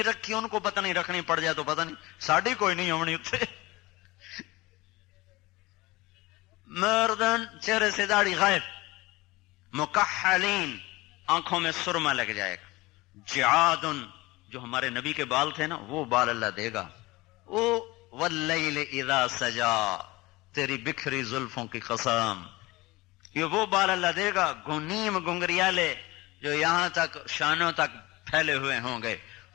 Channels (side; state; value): right; quieter; 21.2 dB